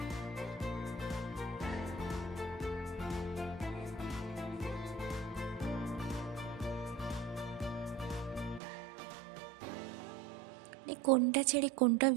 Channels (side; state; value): left; drops out; at 8.6 s